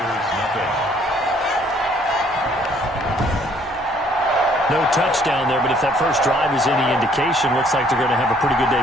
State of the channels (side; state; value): both; normal; correlation 0.62